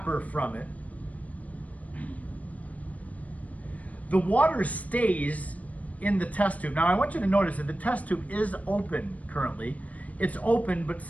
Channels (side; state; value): right; late; 0.069 ms